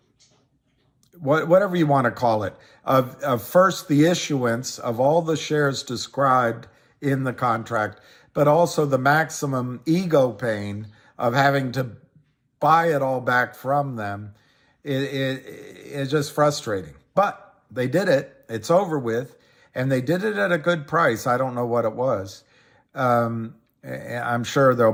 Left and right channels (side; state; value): both; identical; correlation 1.00